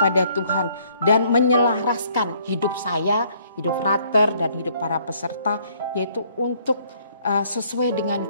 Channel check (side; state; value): both; inverted; correlation -0.64